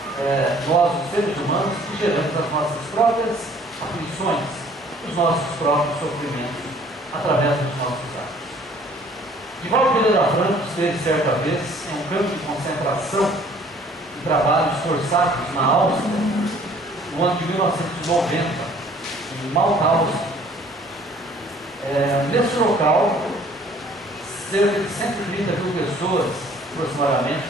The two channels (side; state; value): both; normal; correlation 0.56